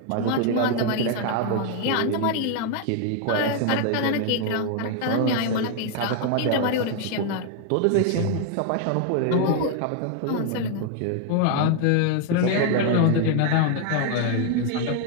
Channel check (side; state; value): both; different; correlation 0.00